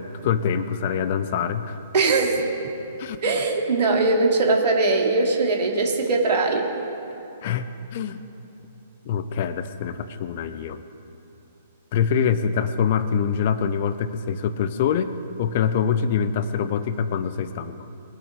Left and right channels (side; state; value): both; inverted; correlation -0.47